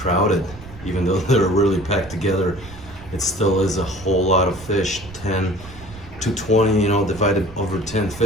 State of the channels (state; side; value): noise; right; rumble, 17 dB below the sound